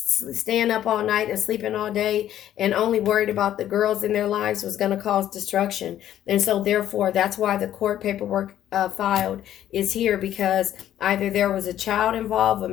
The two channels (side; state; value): right; quieter; 11.7 dB